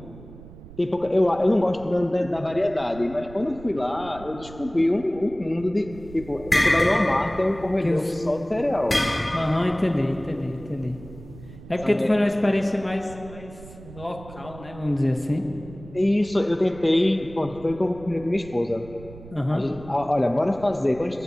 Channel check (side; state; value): right; noise; rumble, 17 dB below the sound